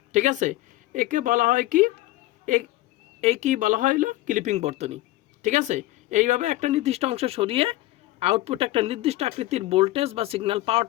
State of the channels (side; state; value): right; quieter; 17.2 dB